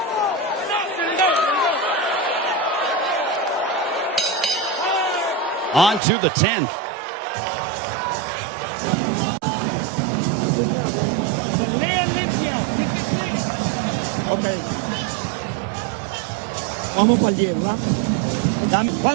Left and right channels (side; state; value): left; drops out; at 6.0 s